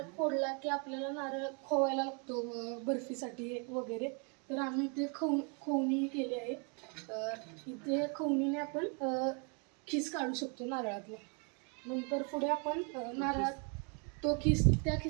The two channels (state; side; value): quieter; left; 36.4 dB